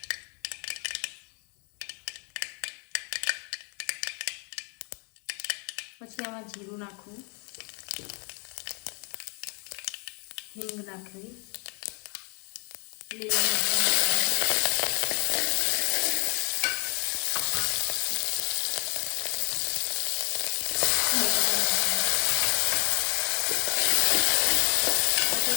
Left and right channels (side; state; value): right; quieter; 37.3 dB